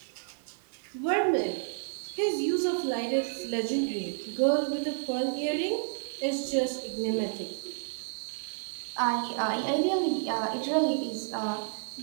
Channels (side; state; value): left; silent; 57 dB below the other